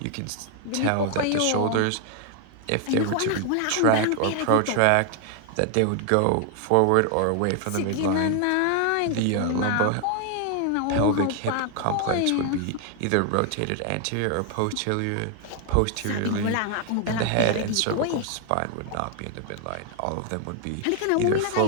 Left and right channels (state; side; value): different; both; correlation 0.00